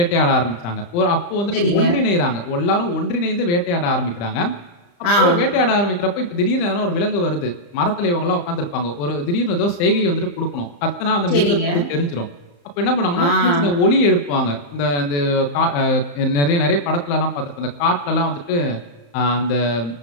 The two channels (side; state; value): right; late; 35 ms